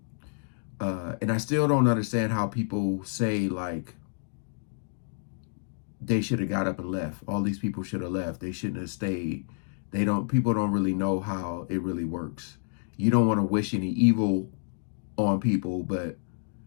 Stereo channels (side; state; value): right; silent; 59 dB below the other